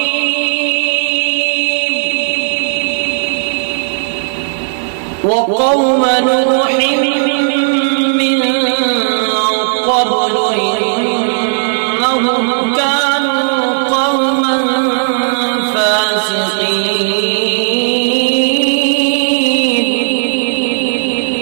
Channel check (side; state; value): left; silent; digital silence